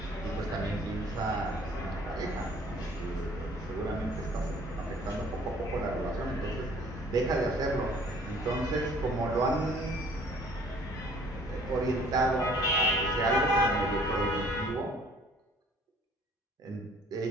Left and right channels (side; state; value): both; normal; correlation 0.55